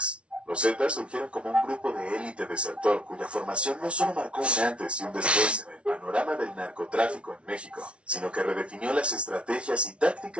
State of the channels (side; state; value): left; late; 0.060 ms